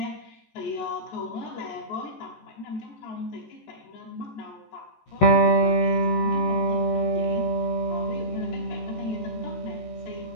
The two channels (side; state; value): right; late; 14 ms